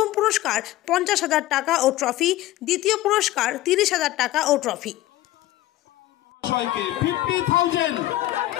পুরস্কার 50,000 টাকা ও ট্রফি, দ্বিতীয় পুরস্কার 30,000 টাকা ও ট্রফি।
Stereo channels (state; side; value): quieter; right; 15.7 dB